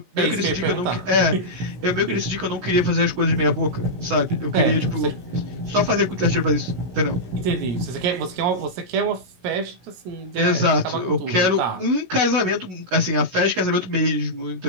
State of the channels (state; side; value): late; left; 17 ms